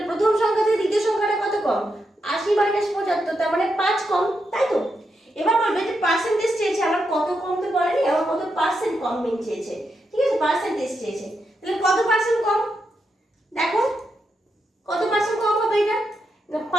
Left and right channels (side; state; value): both; normal; correlation 0.84